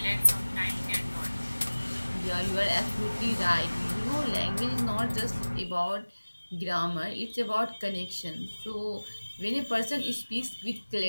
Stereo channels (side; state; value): both; inverted; correlation -1.00